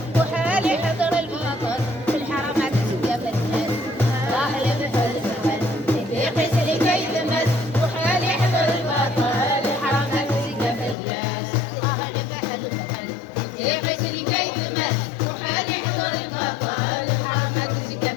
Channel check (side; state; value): right; drops out; at 11.0 s